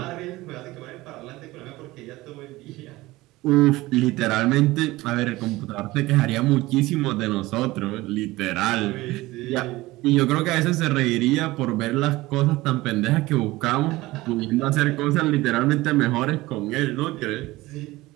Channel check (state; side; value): quieter; left; 19.2 dB